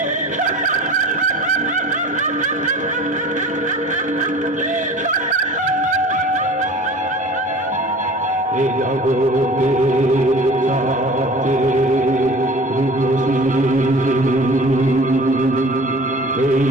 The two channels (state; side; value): normal; both; correlation 0.42